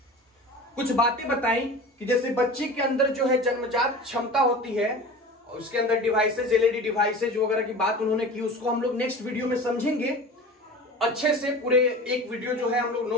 कुछ बातें बताई कि जैसे बच्चे के अंदर जन्मजात क्षमता होती है, उसके अंदर डिवाइसेज, एलईडी डिवाइसेज वगैरह की बात उन्होंने की। उसको हम लोग नेक्स्ट वीडियो में समझेंगे अच्छे से। पूरे एक वीडियो हम लोग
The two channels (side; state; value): both; normal; correlation 0.36